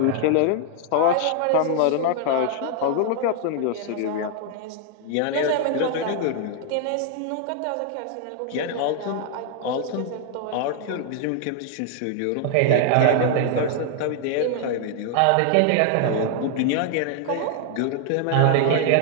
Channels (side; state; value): both; different; correlation 0.00